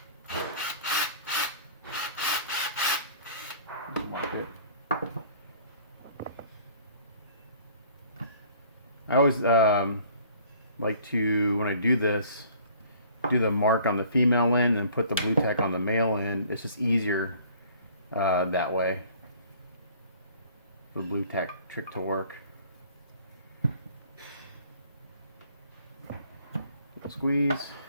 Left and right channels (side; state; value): both; inverted; correlation -0.53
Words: Mark it. I always like to, when I do this, do the mark on the female end and put the blue tack on the male end. It's just easier that way. The blue tack trick to work. Little squeeze.